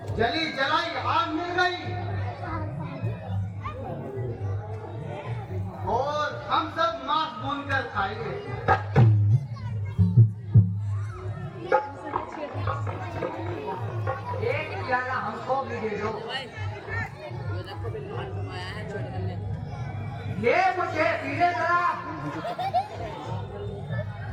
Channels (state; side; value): identical; both; correlation 1.00